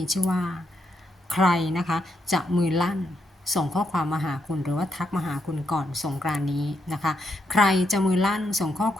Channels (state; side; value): normal; both; correlation 0.80